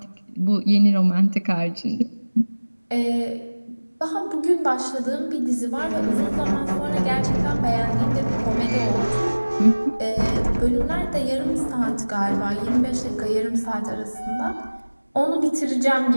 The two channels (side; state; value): both; inverted; correlation -1.00